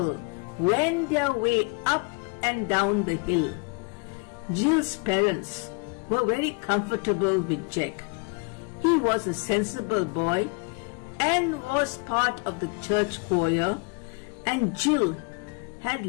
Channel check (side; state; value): right; quieter; 32.7 dB